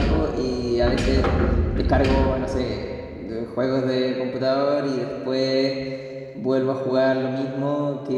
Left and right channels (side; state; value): both; identical; correlation 1.00